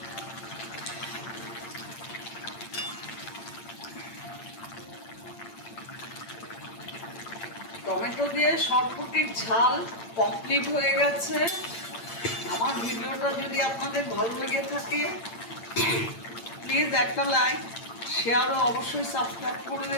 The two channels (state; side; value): late; right; 8.8 ms